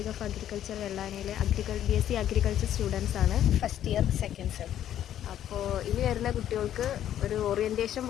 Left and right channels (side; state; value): right; quieter; 11.1 dB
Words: ഓഫ് അഗ്രികൾച്ചർ വെള്ളാനയിൽ BSc അഗ്രികൾച്ചർ സ്റ്റുഡൻസ് ആണ്. First year second sem. അപ്പോൾ ഇനി വരുന്ന കുട്ടികൾക്ക് ഒരു ഓറിയൻറ്റേഷൻ